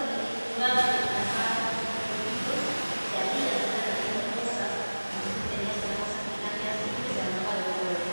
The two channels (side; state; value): both; inverted; correlation -1.00